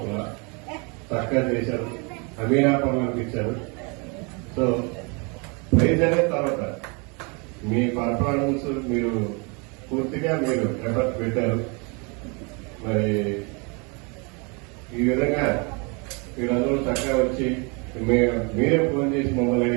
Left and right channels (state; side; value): quieter; left; 32.0 dB